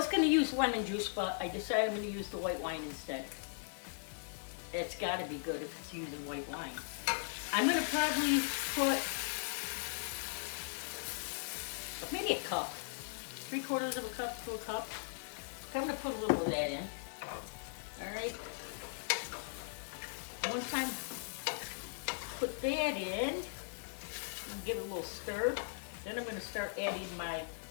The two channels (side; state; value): right; silent; digital silence